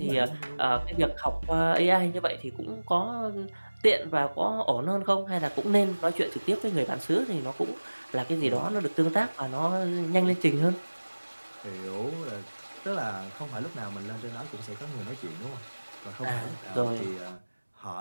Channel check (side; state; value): both; inverted; correlation -1.00